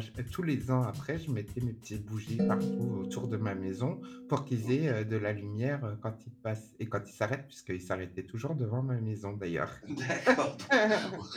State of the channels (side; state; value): both; identical; correlation 1.00